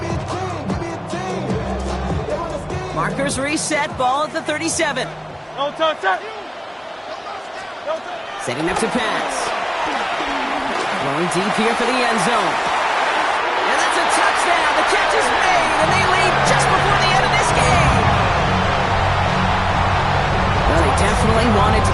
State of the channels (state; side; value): identical; both; correlation 1.00